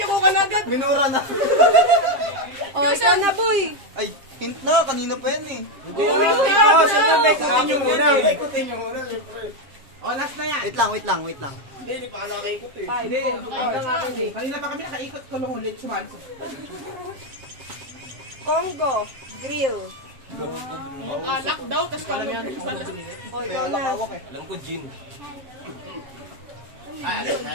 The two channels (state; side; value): late; left; 7.4 ms